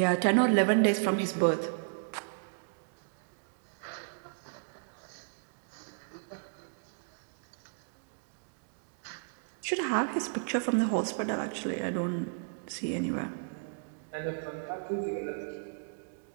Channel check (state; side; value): silent; left; digital silence